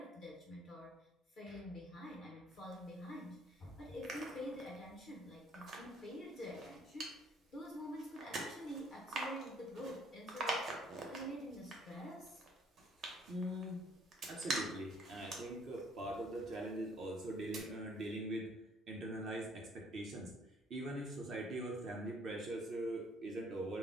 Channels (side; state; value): both; normal; correlation 0.62